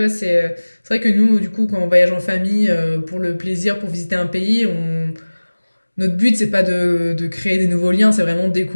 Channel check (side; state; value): both; inverted; correlation -1.00